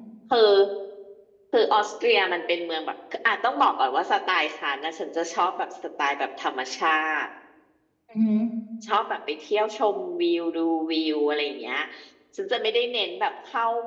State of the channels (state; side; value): identical; both; correlation 1.00